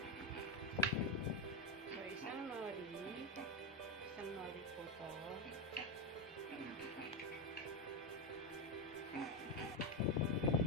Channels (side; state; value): both; normal; correlation 0.10